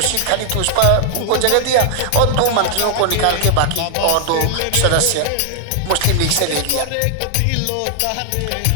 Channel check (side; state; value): both; different; correlation 0.00